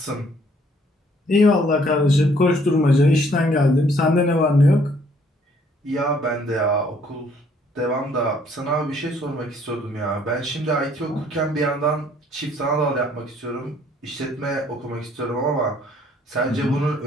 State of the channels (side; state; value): both; normal; correlation 0.63